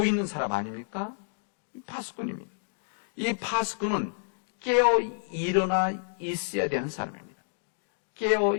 있는 사람 아닙니까? 파수꾼입니다. 이 파수꾼은 깨어 일어나 있어야 되는 사람입니다. 깨어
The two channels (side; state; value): right; silent; digital silence